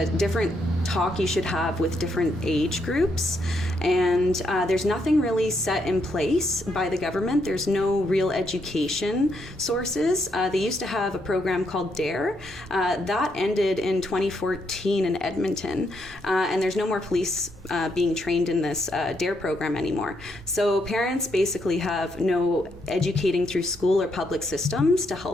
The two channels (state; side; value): normal; both; correlation 0.77